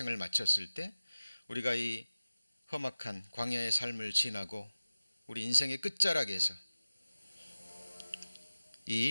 마쳤을 때 우리가 이 험악한 광야의 삶을 지나고 우리 인생의 끝자락에서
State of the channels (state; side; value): inverted; both; correlation -0.97